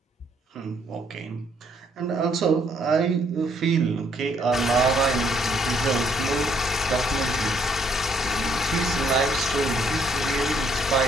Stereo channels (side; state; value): both; normal; correlation 0.68